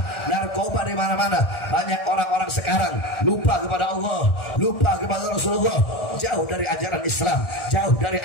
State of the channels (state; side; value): late; right; 1.6 ms